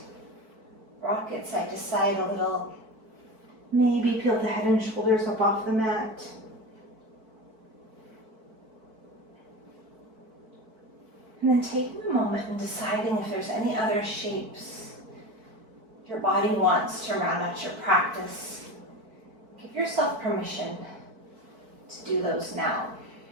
Rock it side to side a little. Maybe peel the head and shoulders up off the mat. And then taking a moment and deciding if there's any other shapes your body wants to round out your practice. Give yourself permission to do those now.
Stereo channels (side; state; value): left; late; 4.5 ms